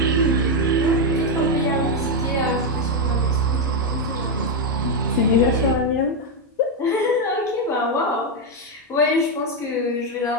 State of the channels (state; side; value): normal; both; correlation 0.04